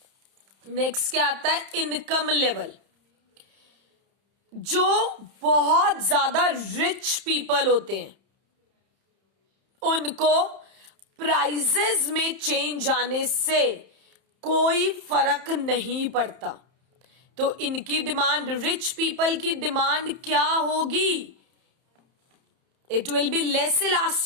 Next क्या आता है, इनकम लेवल। जो बहुत ज्यादा रिच पीपल होते हैं उनको प्राइसेस में चेंज आने से कोई फर्क नहीं पड़ता। तो इनकी डिमांड, रिच पीपल की डिमांड क्या होगी, it will be less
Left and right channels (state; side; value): late; left; 31 ms